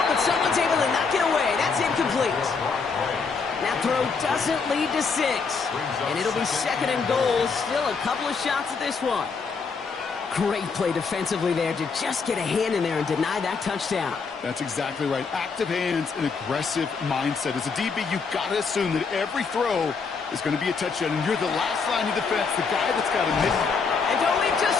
but someone's able to knock it away. That's incomplete. That throw doesn't lead to 6. And it'll be second and goal. Still a couple of shots at this one. Great play defensively there to just get a hand in there and deny that touchdown. That's exactly right. Active hands and aggressive mindset. As a DB, you've got to assume that every throw is going to be a touchdown, and you're the last line of defense, the guy that's got to miss it. And don't leave just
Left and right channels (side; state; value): right; quieter; 5.1 dB